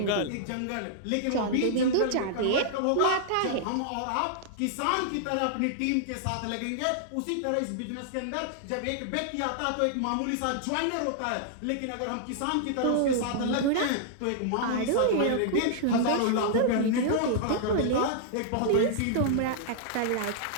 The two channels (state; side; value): different; both; correlation -0.01